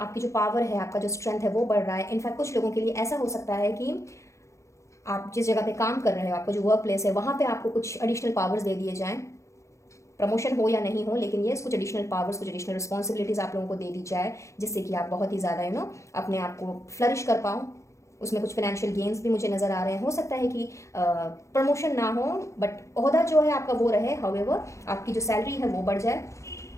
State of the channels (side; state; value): right; late; 0.14 ms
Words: जो पावर है, आपका जो स्ट्रेंथ है वो बढ़ रहा है। इनफैक्ट कुछ लोगों के लिए ऐसा हो सकता है कि आप जिस जगह पे काम कर रहे हो, आपका जो वर्क प्लेस है, वहाँ पे आपको कुछ एडिशनल पावर्स दे दिए जाएँ, प्रमोशन हो या नहीं हो, लेकिन ये कुछ एडिशनल पावर्स, कुछ एडिशनल रिस्पॉन्सिबिलिटीज़ आप लोगों को दे दी जाए, जिससे कि आप बहुत ही ज़्यादा अपने आप को फ्लरिश कर पाओ। उसमें कुछ फाइनेंशियल गेन्स भी मुझे नज़र आ रहे हैं। हो सकता है कि प्रमोशन ना हो, बट ओहदा जो है आपका वो रहे। हाउएवर आपकी जो सैलरी है वो बढ़ जाए